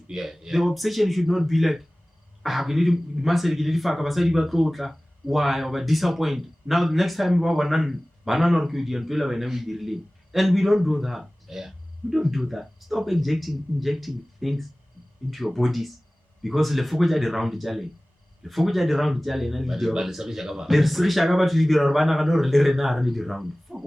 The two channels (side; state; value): both; normal; correlation 0.98